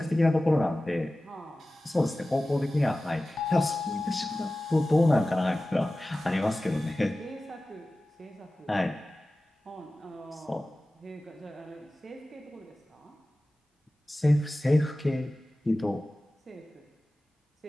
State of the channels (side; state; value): both; normal; correlation 0.96